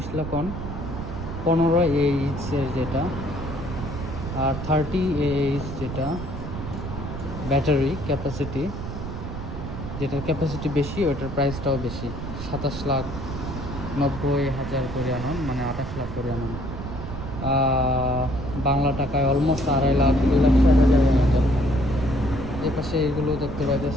লাখ অন, 15 এইচের যেটা, আর 30 এইচ যেটা ব্যাটারি ক্যাপাসিটি, যেটার ক্যাপাসিটি বেশি ওটার প্রাইসটাও বেশি। 27,90,000 করে আনুন, মানে 28 লাখ করে আনুন। বাংলা টাকায় অলমোস্ট 2.5 লাখ 2,60,000 মতো। এ পাশে এগুলো দেখতে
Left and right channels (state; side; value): noise; right; rumble, 7 dB below the sound